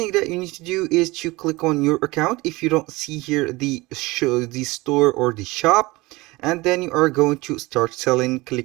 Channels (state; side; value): quieter; left; 21.9 dB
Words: that you need to do is to click on your account. If you don't see here the store or the shop, and then you are going to start selling,